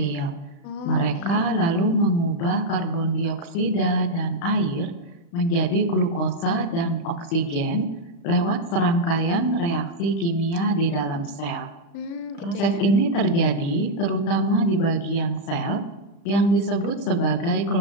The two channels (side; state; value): right; late; 36 ms